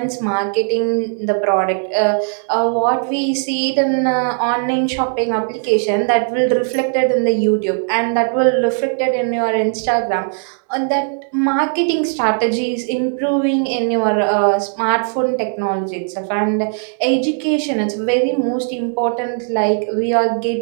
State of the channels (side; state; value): left; silent; 58 dB below the other